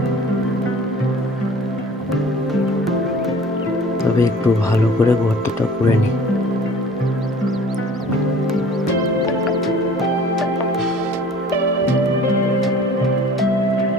তবে একটু ভালো করে গর্তটা করে নিই।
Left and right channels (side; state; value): both; normal; correlation 0.47